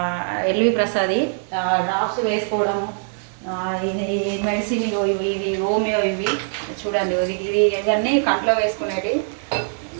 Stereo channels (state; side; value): silent; left; 64 dB below the other